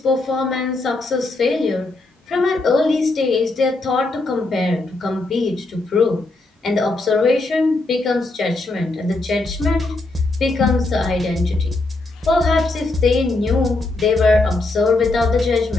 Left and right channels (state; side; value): quieter; right; 3.1 dB